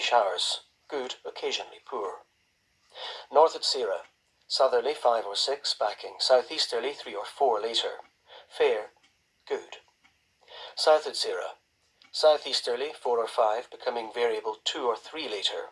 good, occasionally poor. North at Sierra, southerly 5 or 6, backing southeasterly 3 or 4 later. Fair, good. South at Sierra, southeasterly 4 or 5, becoming variable 2 or 3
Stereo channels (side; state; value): both; identical; correlation 1.00